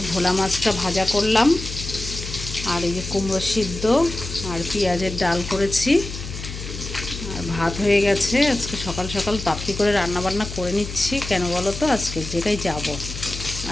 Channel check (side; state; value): left; noise; hum, 9 dB below the sound